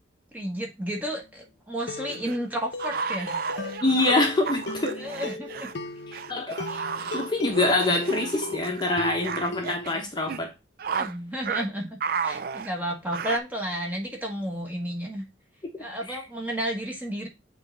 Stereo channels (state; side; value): normal; both; correlation 0.18